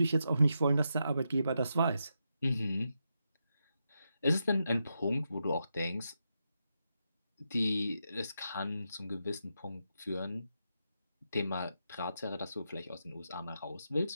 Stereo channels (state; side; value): inverted; both; correlation -0.85